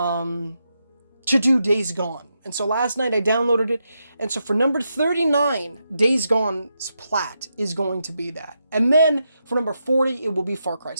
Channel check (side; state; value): both; inverted; correlation -0.84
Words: do Days Gone. And so last night I downloaded it. And so for number 39, Days Gone's plat is going to be that. And then for number 40, it will be Far Cry